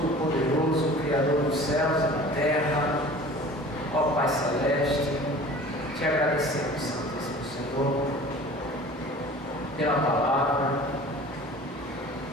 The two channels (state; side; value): normal; both; correlation 0.43